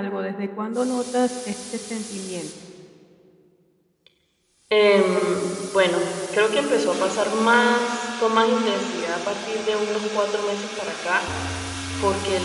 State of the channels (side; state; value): both; identical; correlation 1.00